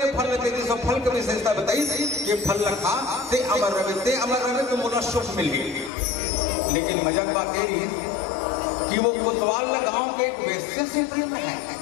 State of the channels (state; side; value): drops out; right; at 5.9 s